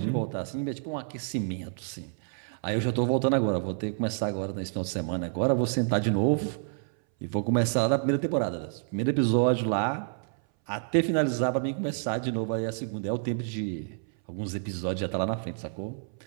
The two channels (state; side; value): silent; left; 59 dB below the other